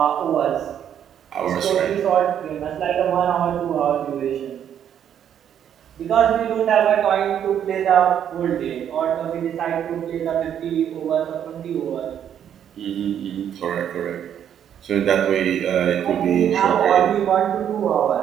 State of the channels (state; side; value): quieter; left; 9.4 dB